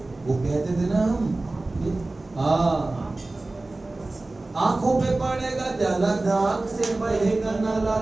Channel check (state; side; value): quieter; left; 3.0 dB